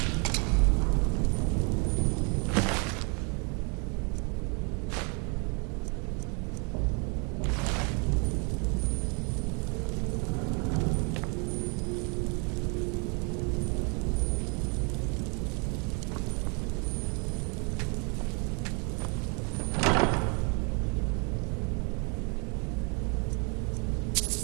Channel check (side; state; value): left; quieter; 34.9 dB